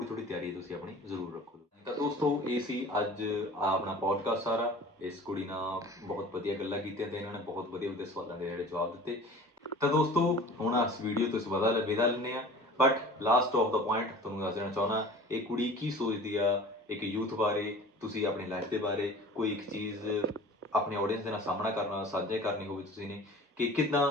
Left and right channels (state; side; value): normal; both; correlation 0.42